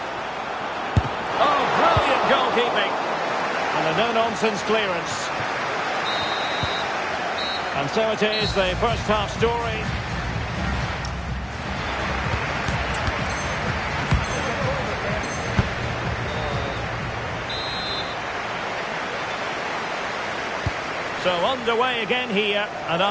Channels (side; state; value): both; identical; correlation 1.00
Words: Oh, brilliant goalkeeping. And a no-nonsense clearance. And so it is, the first half story. So underway again here, and